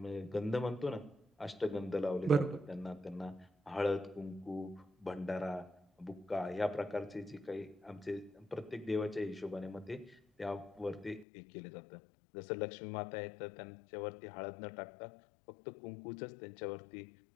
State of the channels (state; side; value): drops out; right; at 11.2 s